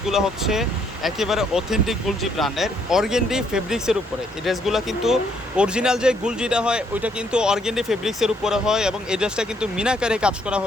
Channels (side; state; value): both; normal; correlation 0.70